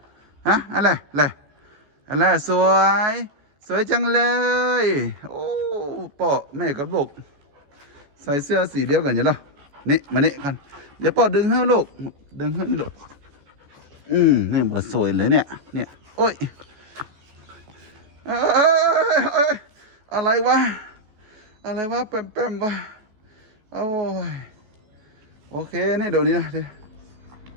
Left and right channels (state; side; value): late; left; 14 ms